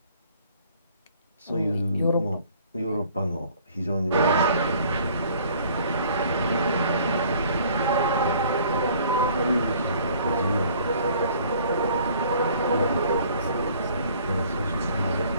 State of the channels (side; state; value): both; inverted; correlation -0.55